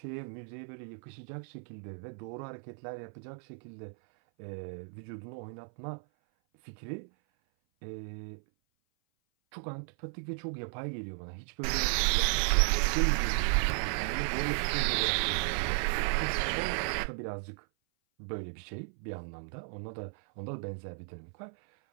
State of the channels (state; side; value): silent; left; 55 dB below the other